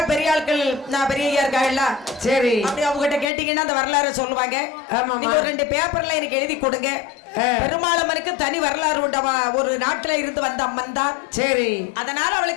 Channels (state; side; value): drops out; right; at 3.3 s